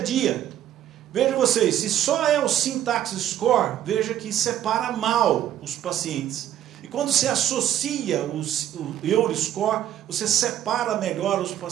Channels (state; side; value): quieter; left; 11.5 dB